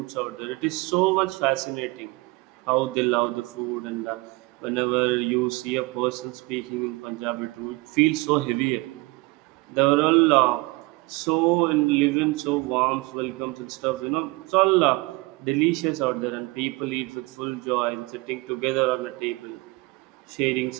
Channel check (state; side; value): quieter; left; 24.1 dB